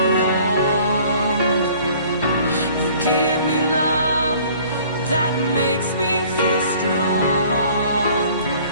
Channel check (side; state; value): both; inverted; correlation -0.53